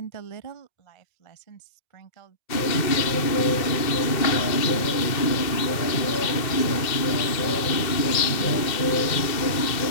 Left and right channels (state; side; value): late; right; 2.1 ms